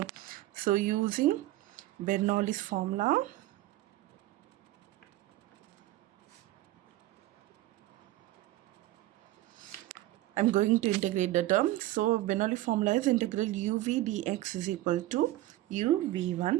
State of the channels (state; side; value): quieter; left; 16.2 dB